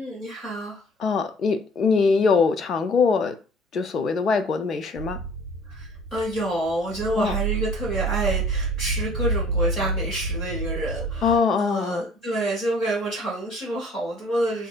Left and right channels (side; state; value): both; normal; correlation 0.52